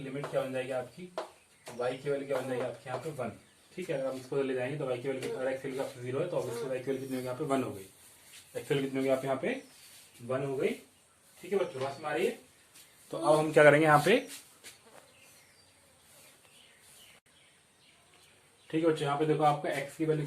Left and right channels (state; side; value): identical; both; correlation 1.00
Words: लिमिट क्या बन जाएगी आपकी, y की वैल्यू क्या बन जाएगी आपके यहाँ पे 1। ठीक है, अगर हम इसको ले जाएंगे तो y की वैल्यू, अगर x की वैल्यू आपकी 0 है तो ऑब्वियसली y की वैल्यू कितनी होगी यहाँ पे 1 हो गई, x की वैल्यू कितनी होगी आप यहाँ पे 1 हो गई। ठीक है बच्चों, बात समझ आ रही है। तो अब हम क्या करेंगे यहाँ पे, ठीक है बच्चों, यहाँ पे देखो आपका x की वैल्यू